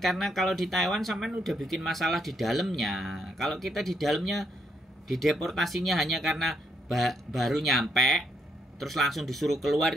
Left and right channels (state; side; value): normal; both; correlation 0.76